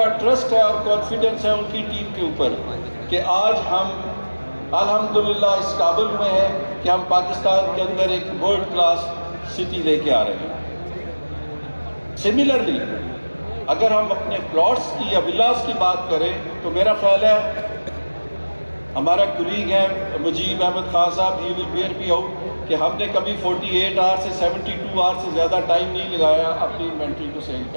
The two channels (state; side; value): inverted; both; correlation -1.00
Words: ٹرسٹ ہے اور کانفیڈنس ہے ان کی ٹیم کے اوپر کہ آج ہم الحمدللہ اس قابل میں ہیں کہ ہم پاکستان کے اندر ایک ورلڈ کلاس سٹی لے کے آ رہے ہیں. سملرلی اگر ہم اپنے پلاٹس کی یا ولاز کی بات کریں تو میرا خیال ہے ہمارا کولیگ ہے مجیب احمد خان صاحب، ہی ول بیئر می آؤٹ، کہ ہم نے کبھی 48 آور سے 72 آور سے زیادہ ٹائم نہیں لگایا اپنی انوینٹری کو سیل